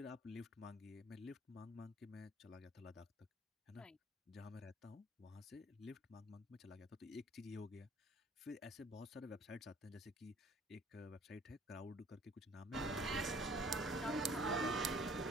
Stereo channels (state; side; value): normal; both; correlation 0.55